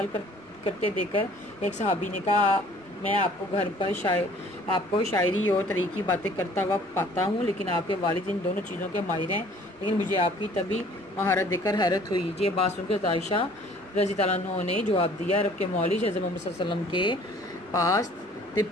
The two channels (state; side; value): normal; both; correlation 0.54